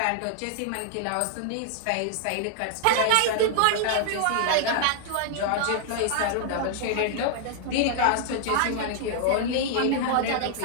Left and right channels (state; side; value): different; both; correlation -0.01